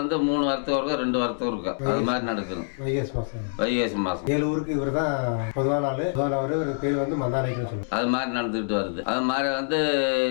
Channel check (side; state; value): right; silent; digital silence